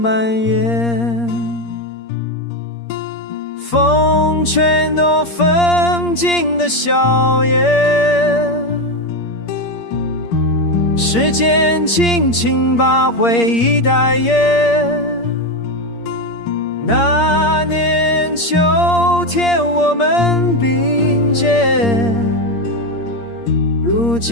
延。风吹诺风景的笑颜，时间轻轻把回忆带远。那年秋天我们并肩，如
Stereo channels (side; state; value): right; late; 8.6 ms